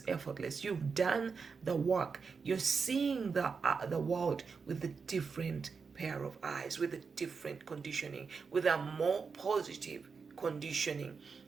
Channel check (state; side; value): quieter; left; 5.3 dB